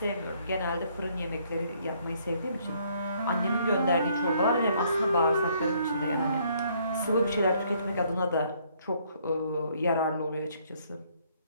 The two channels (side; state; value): both; inverted; correlation -0.66